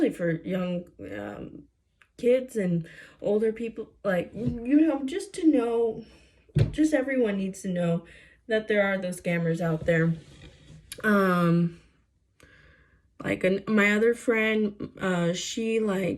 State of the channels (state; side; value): identical; both; correlation 1.00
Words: for young kids and older people, like, just to know, just everyone needs to know that there are those scammers out there. My other friend, she